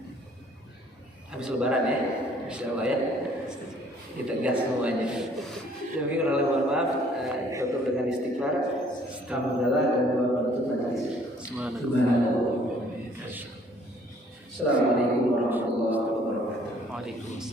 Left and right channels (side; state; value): both; normal; correlation 0.59